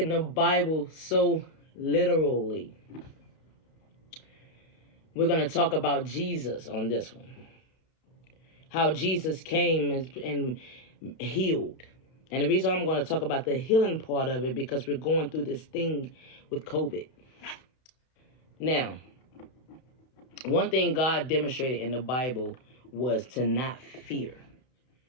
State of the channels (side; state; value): right; late; 31 ms